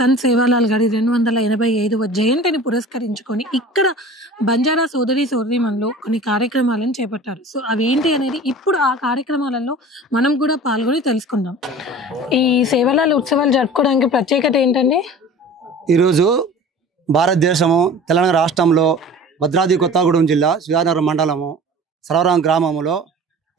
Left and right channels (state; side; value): normal; both; correlation 0.41